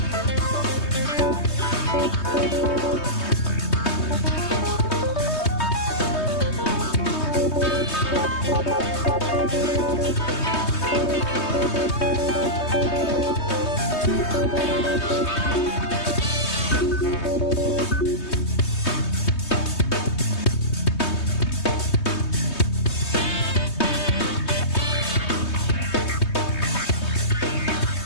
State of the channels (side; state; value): right; late; 3.2 ms